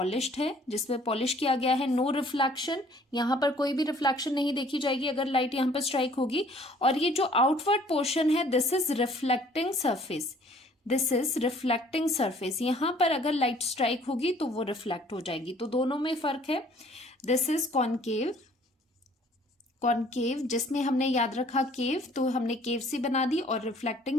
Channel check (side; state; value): both; normal; correlation 0.57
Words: है, जिसमें पॉलिश किया गया है, नो रिफ्लेक्शन। यहाँ पर कोई भी रिफ्लेक्शन नहीं देखी जाएगी अगर लाइट यहाँ पर स्ट्राइक होगी। और ये जो आउटवर्ड पोर्शन है, this is reflecting surface. This is reflecting surface. यहां पर अगर लाइट स्ट्राइक होगी तो वो रिफ्लेक्ट हो जाएगी। तो दोनों में फर्क है। दिस इज कॉनकेव, कॉनकेव जिसमें हमने याद रखा केव, तो हमने केव सी बना दी। और